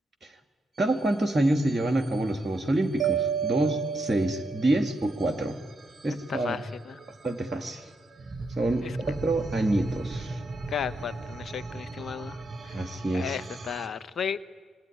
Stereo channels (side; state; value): both; normal; correlation 0.81